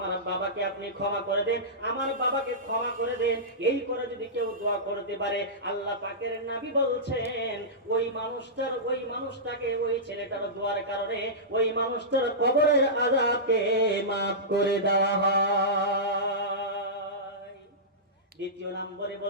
বাবাকে আপনি ক্ষমা করে দেন, আমার বাবাকে ক্ষমা করে দেন। এই করে যদি কেউ দোয়া করতে পারে, আল্লাহ পাকের নবী বলছেন ওই মানুষটাকে ওই ছেলেটার দোয়ার কারণে ওই মানুষটার কবরের আযাবকে maaf করে দেওয়া হয়। দ্বিতীয় নম্বরে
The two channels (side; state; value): both; normal; correlation -0.16